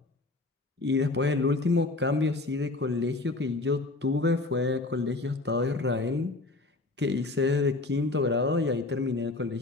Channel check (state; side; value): quieter; right; 3.2 dB